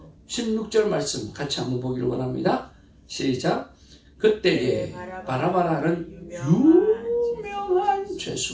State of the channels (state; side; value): identical; both; correlation 1.00